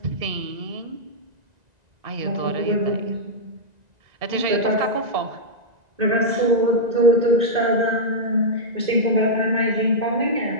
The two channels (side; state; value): left; late; 1.9 ms